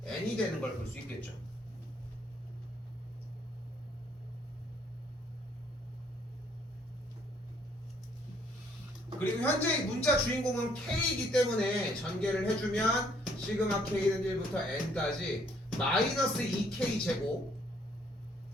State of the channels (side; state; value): both; normal; correlation 0.66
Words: N이 되는 걸 볼 수 있겠죠. 그리고 현재 문자 주인공은 K이기 때문에 전개를 해주면 시그마 K는 1부터 N까지 마이너스 2K 제곱